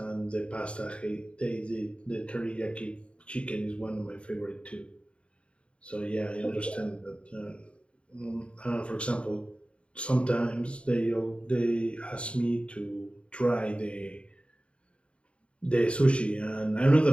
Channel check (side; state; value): right; late; 0.059 ms